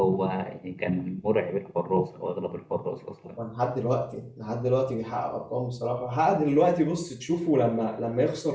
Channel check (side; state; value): both; identical; correlation 1.00